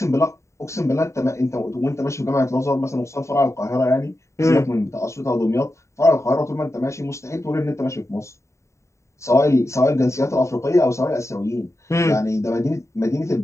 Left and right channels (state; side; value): late; right; 0.14 ms